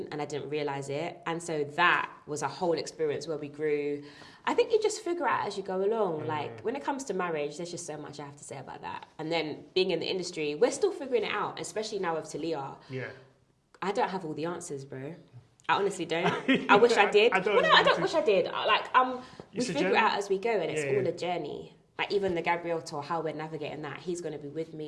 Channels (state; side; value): identical; both; correlation 1.00